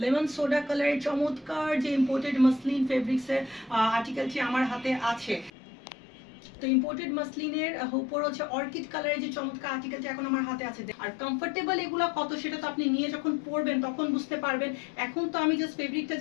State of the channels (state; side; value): drops out; right; at 5.5 s